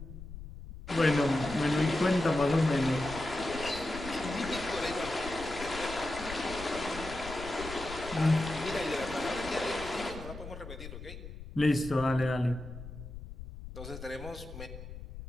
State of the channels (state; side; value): noise; left; rumble, 12 dB below the sound